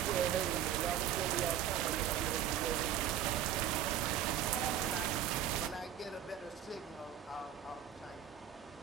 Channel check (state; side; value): quieter; left; 10.2 dB